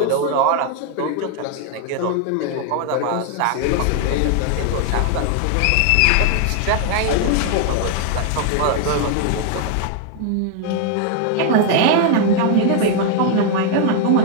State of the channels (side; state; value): both; different; correlation 0.00